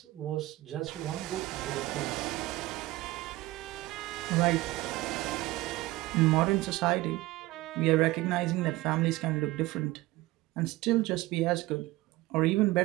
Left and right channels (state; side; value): quieter; left; 18.6 dB